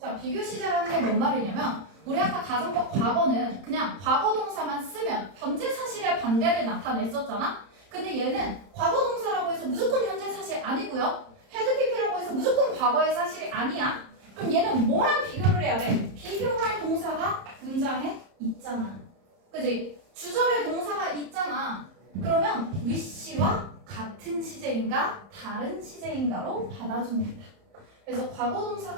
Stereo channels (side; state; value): left; late; 30 ms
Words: 비교 시제라는 게 뭔 말이냐면 우리 아까 가정법 과거는 그냥 과거 동사만 쓰면 현재 사실의 반대를 나타냈었잖아. 근데 얘는 과거 동사라고 해서 무조건 현재 사실 아니고요. had PP라고 해서 무조건 과거의 사실이 아니야. 그럼 얘는 뭐랑 비교를 해야 돼? 비교할 동사가 문장에 있잖아. 그지? 주절에 동사가 있잖아. 그러면 wish와 같은 시제인가 다른 시제인가로 받아줍니다. 그래서 과거